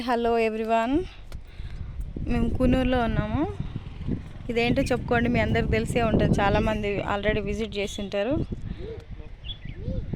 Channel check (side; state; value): both; identical; correlation 1.00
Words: hello everyone. మేము కునూరులో ఉన్నాము. ఇదేంటో చెప్పుకోండి, మీ అందరికి తెలిసే ఉంటుంది, చాలామంది ఆల్రెడీ విజిట్ చేసి ఉంటారు.